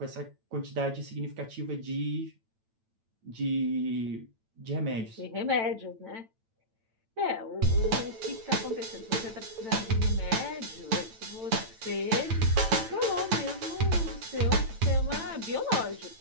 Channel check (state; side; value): late; left; 8.9 ms